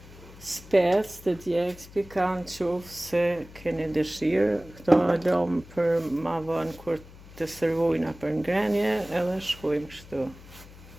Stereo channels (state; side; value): noise; left; hum, 19 dB below the sound